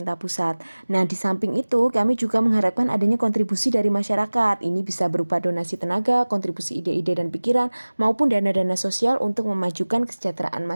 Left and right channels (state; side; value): inverted; both; correlation -1.00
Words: pusat. Nah, di samping itu kami juga mengharapkan adanya kontribusi dari masyarakat. Ini bisa berupa donasi tenaga, kontribusi ide-ide dan pikiran, maupun dana-dana sosial untuk memajukan kesejahteraan